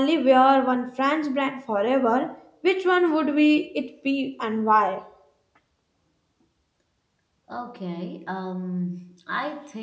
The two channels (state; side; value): identical; both; correlation 1.00